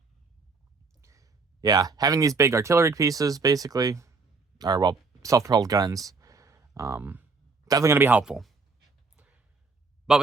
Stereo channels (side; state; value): left; quieter; 4.2 dB